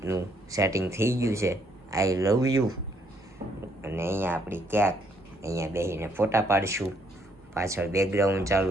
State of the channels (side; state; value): both; normal; correlation 0.70